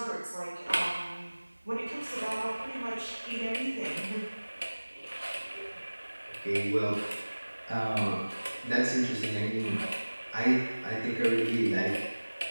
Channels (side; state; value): both; inverted; correlation -1.00